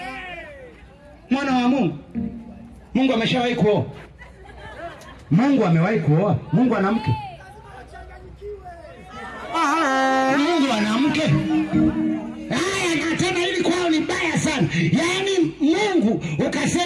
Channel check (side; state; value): both; identical; correlation 1.00